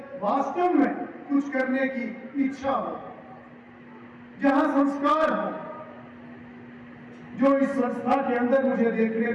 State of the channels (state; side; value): identical; both; correlation 1.00